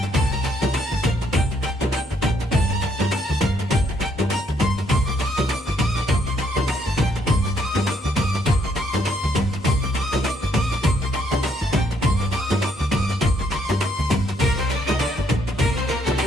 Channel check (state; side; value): normal; both; correlation 0.71